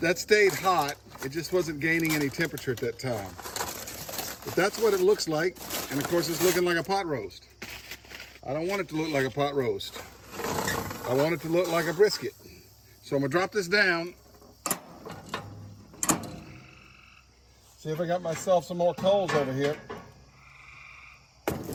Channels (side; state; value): both; identical; correlation 1.00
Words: stayed hot. It just wasn't gaining any temperature at that time. But that's what it looks like. And of course, it's looking like a pot roast. I don't want it to look like a pot roast. I want it to look like a brisket. So I'm gonna drop this down. See if I got myself some more coals over here.